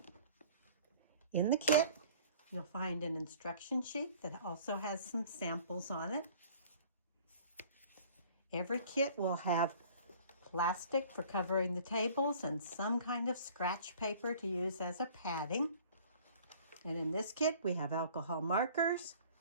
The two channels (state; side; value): inverted; both; correlation -0.49